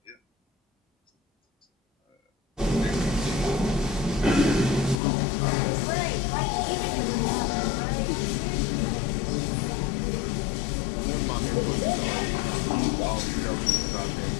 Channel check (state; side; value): drops out; right; at 5.0 s